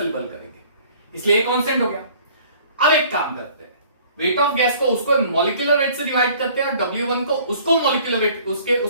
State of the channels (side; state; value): both; inverted; correlation -0.53